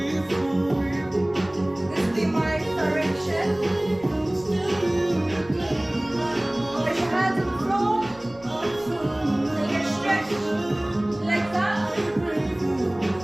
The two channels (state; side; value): noise; right; rumble, 24 dB below the sound